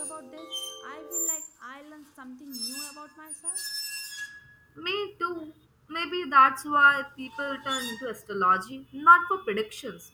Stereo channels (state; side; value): identical; both; correlation 1.00